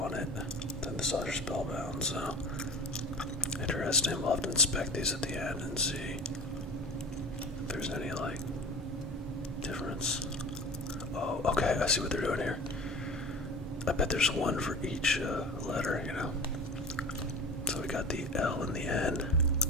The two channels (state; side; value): normal; both; correlation 0.34